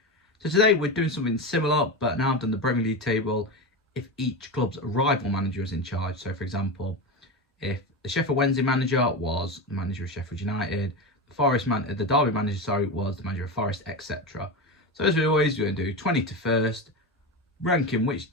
So today we're doing something similar, but now I've done the Premier League table if each club's rival manager is in charge. So for example, if the Sheffield Wednesday manager was the manager of Sheffield United, the Derby manager was the manager of Forest, etc. So as we always do, we're going to do 20 to first, ranking which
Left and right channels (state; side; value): normal; both; correlation 0.20